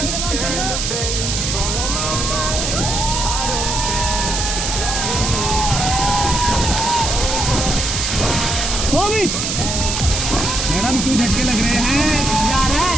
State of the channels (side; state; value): right; noise; hiss, 1 dB below the sound